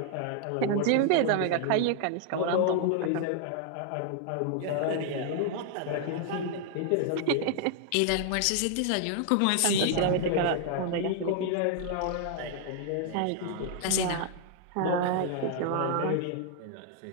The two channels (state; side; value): different; both; correlation 0.00